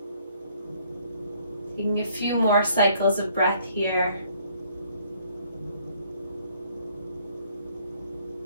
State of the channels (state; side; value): inverted; both; correlation -0.63